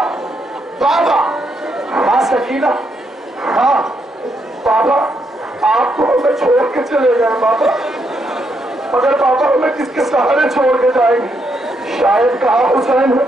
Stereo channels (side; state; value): both; normal; correlation 0.77